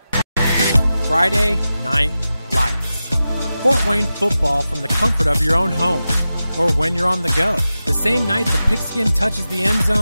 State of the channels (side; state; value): both; inverted; correlation -0.93